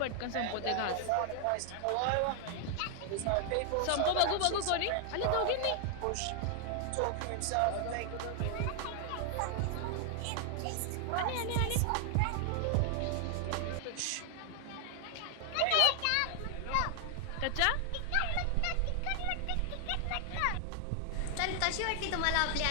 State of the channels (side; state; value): both; different; correlation 0.00